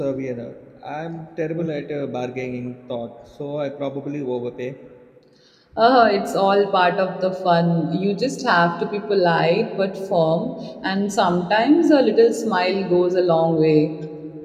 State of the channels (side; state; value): both; identical; correlation 1.00